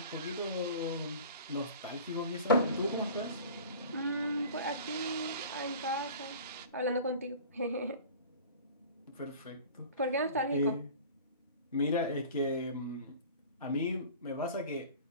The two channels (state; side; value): inverted; both; correlation -0.42